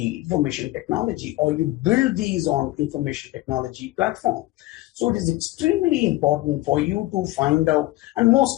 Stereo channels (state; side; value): quieter; right; 18.0 dB